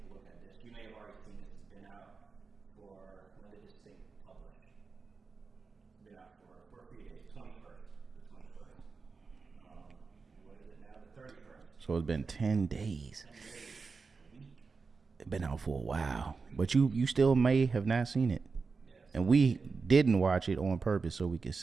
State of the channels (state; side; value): quieter; left; 4.6 dB